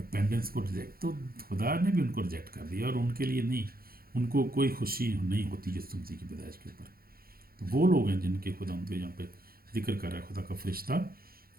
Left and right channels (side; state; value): left; late; 0.43 ms